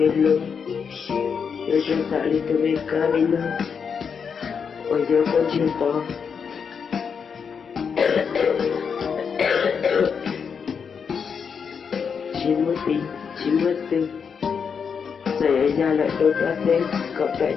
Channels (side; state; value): right; quieter; 6.4 dB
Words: luôn rồi chúng ta đi từ bên cá đi nữa bây giờ con chưa to chỉ mất tiền giải ấy ra lại đôi ta tên cậu đại